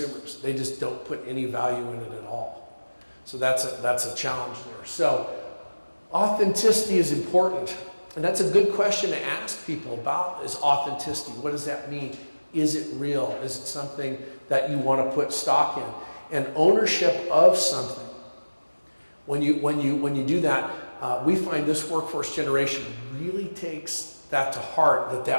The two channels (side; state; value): both; inverted; correlation -1.00